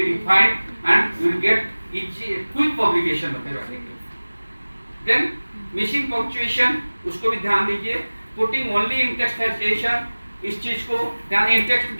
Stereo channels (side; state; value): both; inverted; correlation -1.00